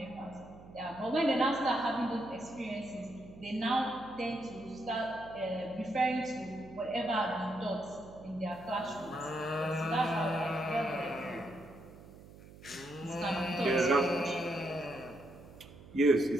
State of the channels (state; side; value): noise; right; hum, 19 dB below the sound